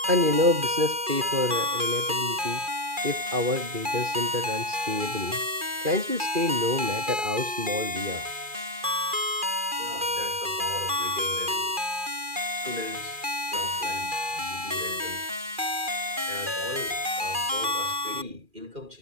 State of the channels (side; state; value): left; late; 2.4 ms